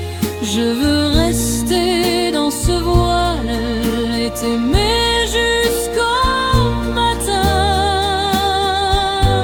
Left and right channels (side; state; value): both; identical; correlation 1.00